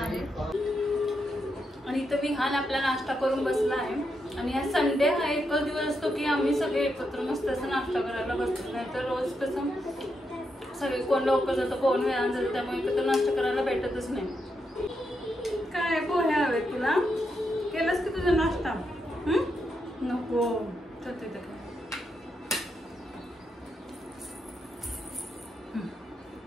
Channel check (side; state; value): both; normal; correlation 0.83